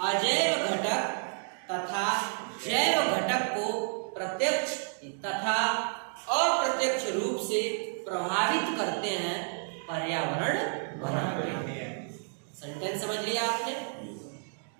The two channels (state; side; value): silent; left; 57 dB below the other